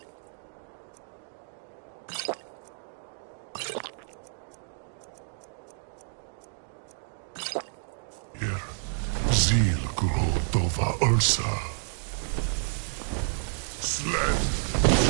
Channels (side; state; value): left; silent; digital silence